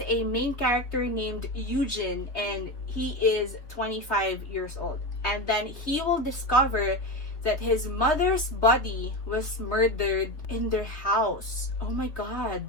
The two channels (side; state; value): right; late; 3.4 ms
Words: a main character named Eugene, and he is 25 years old, and then he will discover that his mother's body was murdered in their house. Oh my